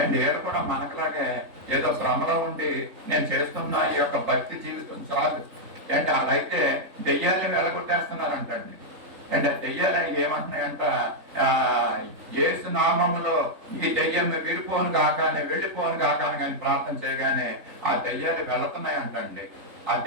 అండ్ ఏడు కూడా మనకులాగే ఏదో భ్రమలో ఉండి నేను చేస్తున్నా ఈ యొక్క భక్తి జీవితం చాలు అంటే అలాగైతే దెయ్యాలని వెళ్ళగొట్టేస్తున్నారంటండి. అంటే దెయ్యాలని ఏమంటున్నాయంట, యేసు నామములో ఈ దెయ్యం విడిపోను కాకానే వెళ్ళిపోను కాకాని కానీ ప్రార్థన చేయగానే ఆ దెయ్యాలు వెళుతున్నాయి అంటండి. ఆ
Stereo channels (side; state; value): left; late; 3.6 ms